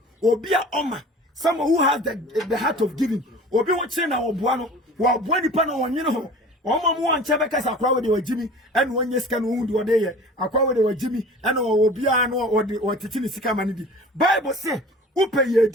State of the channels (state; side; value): normal; both; correlation 0.42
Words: Obi a oma. Someone who has the heart of giving. Obi wo kire na oboa no. Wo oboa nipa na wonye ho. Oma mu anche bekasa akwa we de wagimi ene wonye sika no hundu ode ye akwa we de wagimi ene obi a no otiti ni sika mani di Bible say upe ye